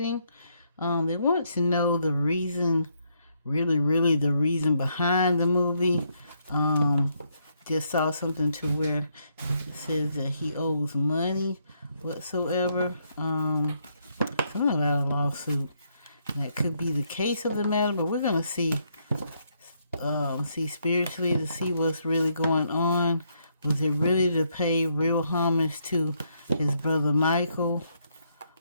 They want to know the reason, really the reason behind the movie. Just saw something to where it says that he owes money whatsoever. Something about a lawsuit. That could be the case of the matter, but we're going to see spiritually to see what's really going on. Was it really to pay real homage to his brother Michael?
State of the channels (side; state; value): both; inverted; correlation -0.75